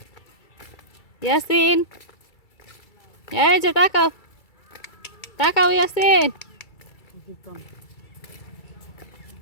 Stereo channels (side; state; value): right; late; 2.3 ms